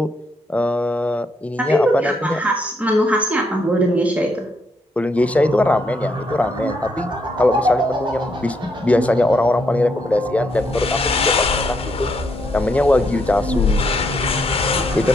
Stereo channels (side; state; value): both; normal; correlation 0.76